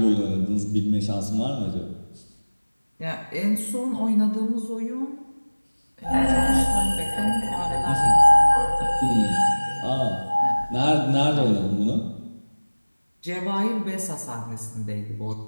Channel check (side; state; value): both; inverted; correlation -1.00